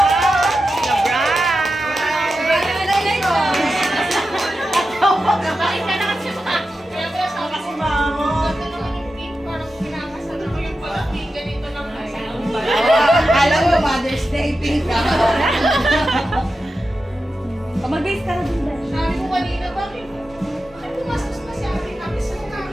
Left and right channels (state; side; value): normal; both; correlation 0.91